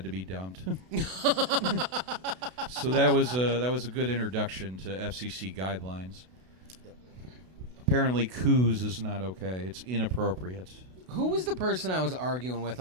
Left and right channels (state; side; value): late; left; 32 ms